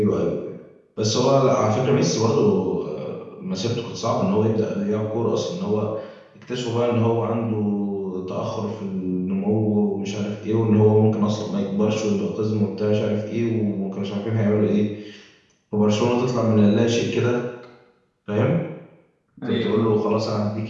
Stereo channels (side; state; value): both; identical; correlation 1.00